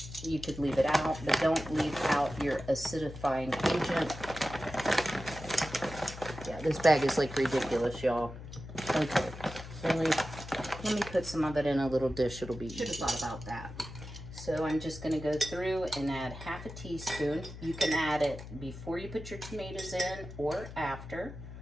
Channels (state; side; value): noise; left; hum, 12 dB below the sound